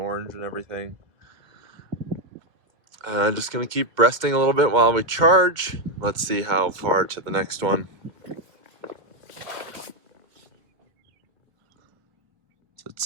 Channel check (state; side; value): late; left; 2.1 ms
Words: and everything. Just gonna keep resting a little bit while we charge. Let's see how far to the next one. So it